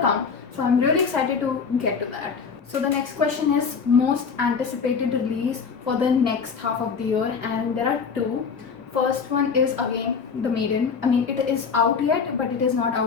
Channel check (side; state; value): right; quieter; 5.7 dB